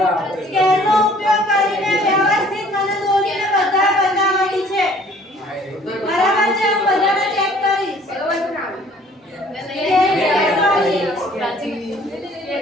સ્કેલનો ઉપયોગ કરીને વ્યવસ્થિત મને દોરીને બધા બતાવવાની છે. બરાબર છે? હું બધાને ચેક કરીશ.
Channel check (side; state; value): both; normal; correlation 0.55